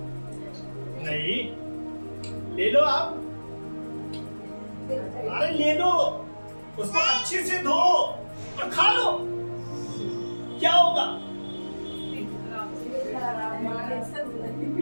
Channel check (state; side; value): inverted; both; correlation -1.00